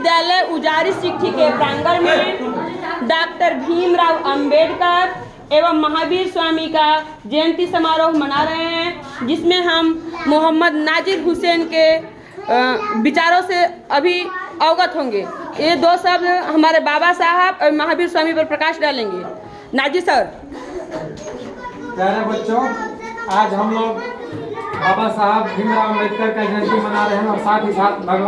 उजारी सिट्ठी के प्रांगण में डॉक्टर भीमराव अंबेडकर एवं महावीर स्वामी का जयंती समारोह मना रहे हैं, जिसमें हम मोहम्मद नाजिर हुसैन के विचारों से अभी अवगत होंगे। ये दो शब्द हमारे बाबा साहब और महावीर स्वामी पर प्रकाश डालेंगे। नाजिर सर। प्यारे बच्चों, आज हम लोग बाबा साहब भीमराव अंबेडकर का जयंती मना रहे हैं और साथ ही साथ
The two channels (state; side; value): identical; both; correlation 1.00